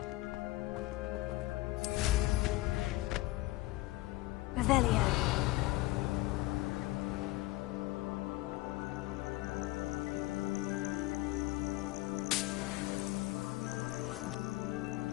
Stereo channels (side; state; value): right; quieter; 18.9 dB